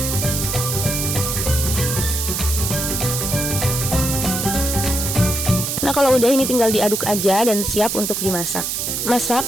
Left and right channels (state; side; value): noise; right; hiss, 2 dB below the sound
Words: Nah kalau udah ini tinggal diaduk aja dan siap untuk dimasak. Masak